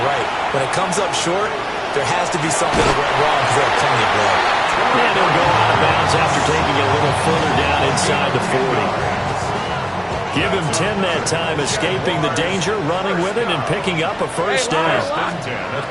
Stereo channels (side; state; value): both; identical; correlation 1.00